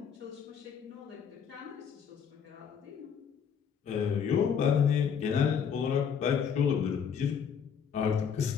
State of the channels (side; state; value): right; quieter; 7.2 dB